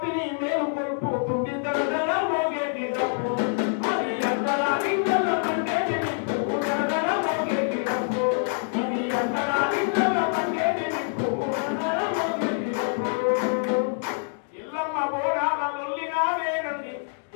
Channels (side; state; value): right; silent; 61 dB below the other